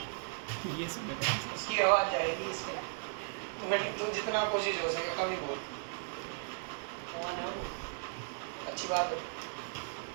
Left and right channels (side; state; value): left; silent; 54 dB below the other